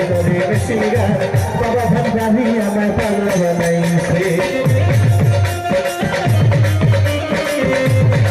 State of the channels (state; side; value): identical; both; correlation 1.00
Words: মেশিন গান বাবা ভান্ডারি আমার পাগলা বানাইছে